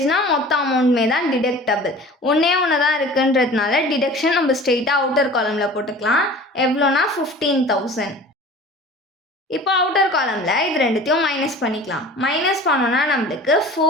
மொத்த அமௌண்ட்மே தான் டிடக்டபிள். ஒன்று தான் இருக்குன்றதுனால டிடக்ஷன் நம்ம ஸ்ட்ரெயிட்டாக அவுட்டர் காலமில் போட்டுக்கலாம். எவ்வளோனா 15,000. இப்போ அவுட்டர் காலமில் இது ரெண்டுத்தையும் மைனஸ் பண்ணிக்கலாம். மைனஸ் பண்ணோன்னா நம்மளுக்கு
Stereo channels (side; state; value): both; normal; correlation 0.42